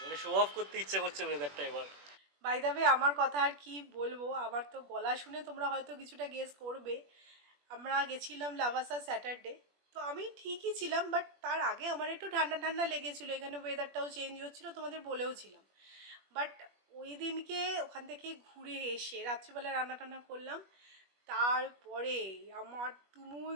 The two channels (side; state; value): left; late; 21 ms